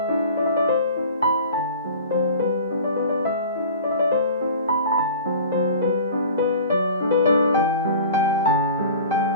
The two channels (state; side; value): inverted; both; correlation -0.41